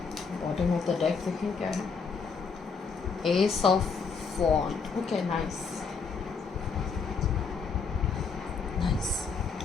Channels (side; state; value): right; quieter; 5.3 dB